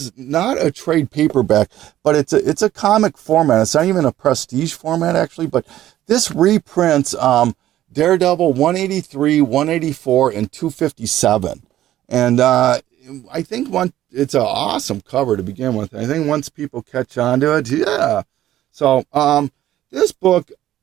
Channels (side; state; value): left; quieter; 13.3 dB